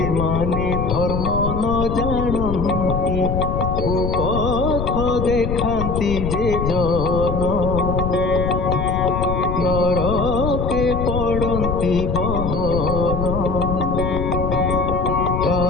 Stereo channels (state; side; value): noise; left; rumble, 2 dB below the sound